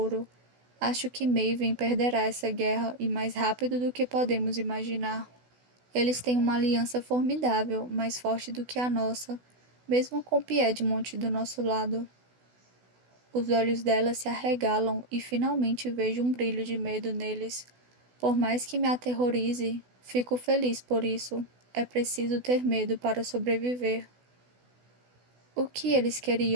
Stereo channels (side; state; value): left; late; 16 ms